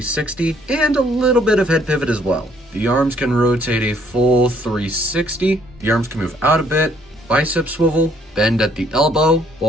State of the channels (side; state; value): both; normal; correlation 0.65